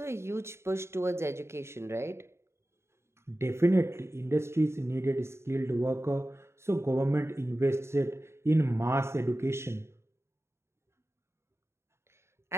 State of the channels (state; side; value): late; left; 0.13 ms